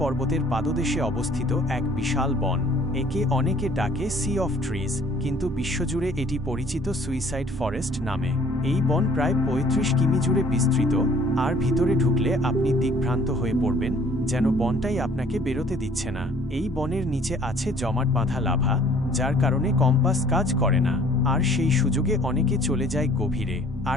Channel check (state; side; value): normal; both; correlation 0.56